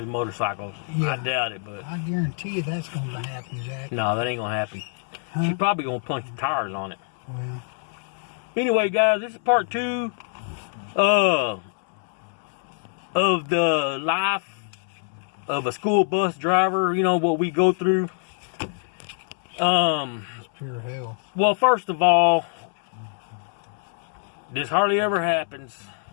motorcycle. Yeah. I doubt it, but I guarantee you that's going to happen, Jack. no, that ain't gonna happen. Huh? She's probably gonna punch the tires on it. Well, Anyway, guys, this is part 2 of the life of a school bus driver. You know what we go through. it's pure hell. Well, first of all, this hardly ever happens,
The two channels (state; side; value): silent; right; 62 dB below the other